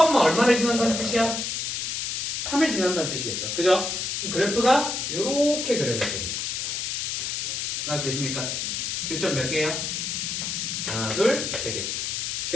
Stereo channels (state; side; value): noise; left; hiss, 2 dB below the sound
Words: 지난다는 뜻이야? 3을 지난다는 뜻이겠죠. 그죠? 그럼 그래프가 이렇게 그려졌겠네요. 알아두십니까? 교점 몇 개예요? 하나, 둘, 세 개.